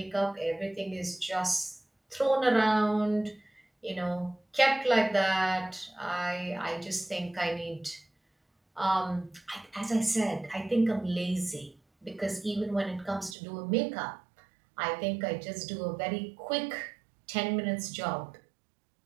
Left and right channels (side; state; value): left; drops out; at 13.4 s